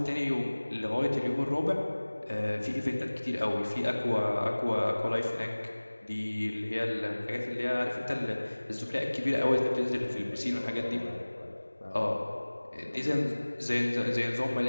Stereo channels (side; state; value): both; inverted; correlation -1.00